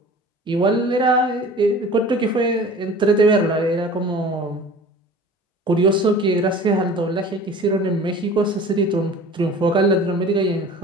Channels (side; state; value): both; normal; correlation 0.43